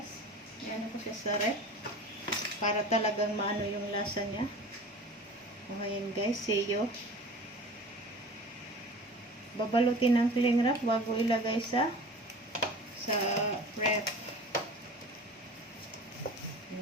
Ayan ko siya sa ref. Para talagang maano yung lasa niya. Ayan guys. See you. Babalutin ng cling wrap bago ilagay sa ref.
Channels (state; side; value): normal; both; correlation 0.39